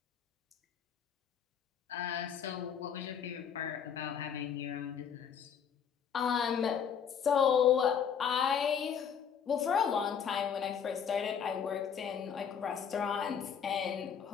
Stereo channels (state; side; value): quieter; right; 7.6 dB